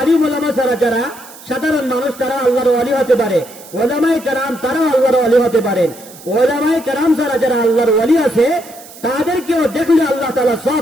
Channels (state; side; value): noise; right; hiss, 19 dB below the sound